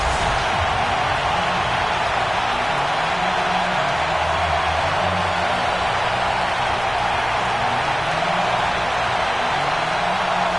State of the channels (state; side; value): noise; left; rumble, 18 dB below the sound